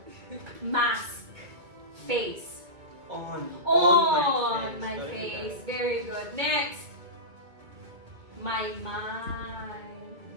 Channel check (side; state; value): left; late; 2.2 ms